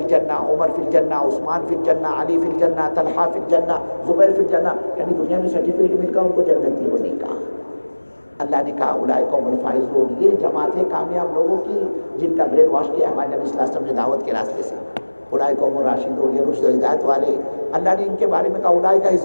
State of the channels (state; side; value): inverted; both; correlation -1.00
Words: الجنہ، عمر فی الجنہ، عثمان فی الجنہ، علی فی الجنہ، طلحہ فی الجنہ، زبیر فی الجنہ. یعنی دنیا میں سرٹیفکیٹ مل کر ان کو جنتی ہونے کا. اللہ نے کہا اولئک هم الفائزون، یہ جماعت ہے کامیاب لوگوں کی جن کا برین واش کیا ہمارے نبی صلی اللہ علیہ وسلم نے دعوت کے راستے سے. اولئک هم الراشدون، یہ رشد و ہدایت والے. اللہ نے ان کے بارے میں کہا اولئک